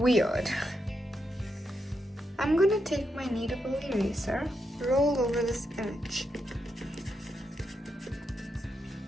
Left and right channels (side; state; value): both; normal; correlation 0.83